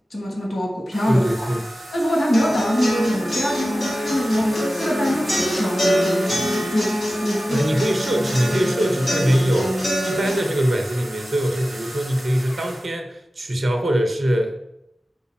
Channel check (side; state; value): both; normal; correlation 0.95